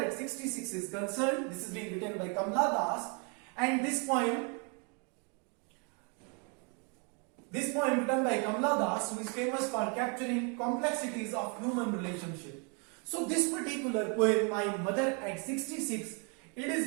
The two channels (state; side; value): quieter; left; 36.2 dB